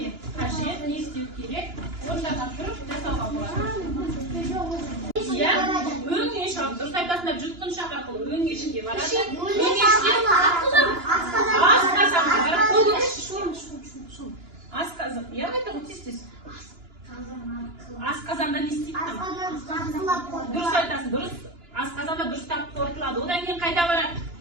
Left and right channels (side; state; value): left; late; 2.9 ms